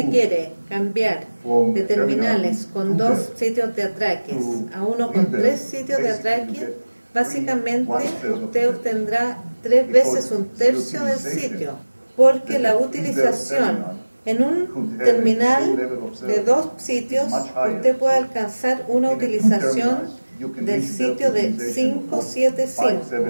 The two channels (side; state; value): both; inverted; correlation -1.00